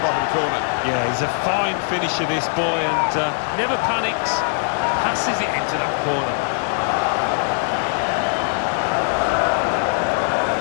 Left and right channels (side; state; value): right; silent; digital silence